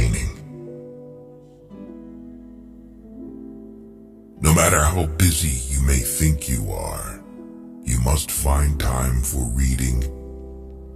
No matter how busy you may think you are, you must find time for reading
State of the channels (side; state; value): both; identical; correlation 1.00